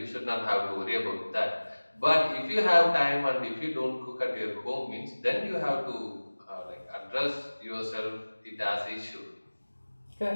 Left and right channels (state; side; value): inverted; both; correlation -1.00